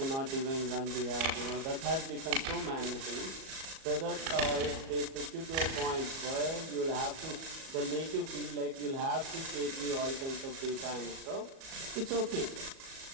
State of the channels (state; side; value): late; left; 37 ms